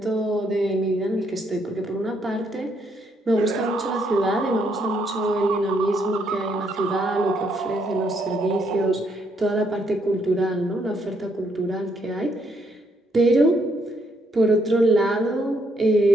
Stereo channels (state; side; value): normal; both; correlation 0.73